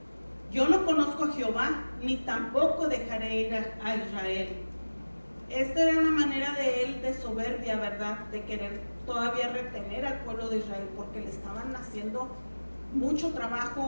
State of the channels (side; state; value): both; inverted; correlation -1.00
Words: Yo no conozco a Jehová, ni tampoco dejaré ir a Israel. Esta era una manera de él de soberbia, ¿verdad?, de querer todavía retener al pueblo de Israel, porque le estaban haciendo mucho